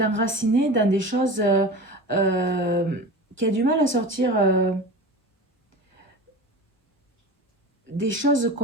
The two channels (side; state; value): both; normal; correlation 0.32